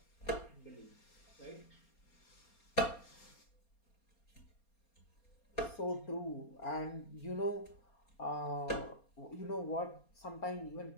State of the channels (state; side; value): late; right; 4.3 ms